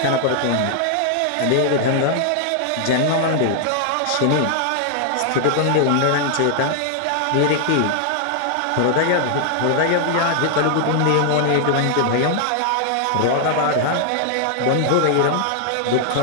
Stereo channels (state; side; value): different; both; correlation 0.00